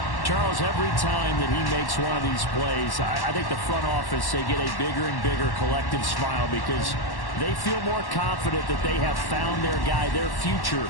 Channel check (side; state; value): right; late; 1.1 ms